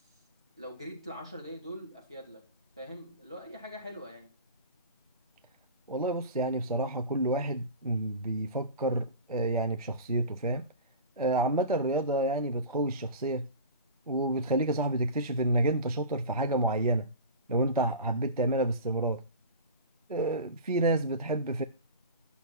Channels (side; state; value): both; inverted; correlation -0.33